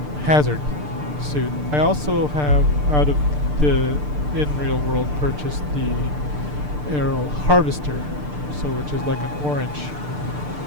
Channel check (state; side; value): late; left; 6.7 ms